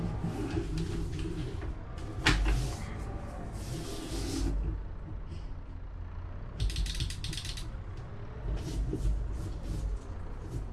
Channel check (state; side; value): identical; both; correlation 1.00